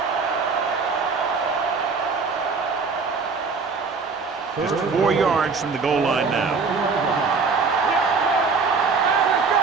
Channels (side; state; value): left; quieter; 4.8 dB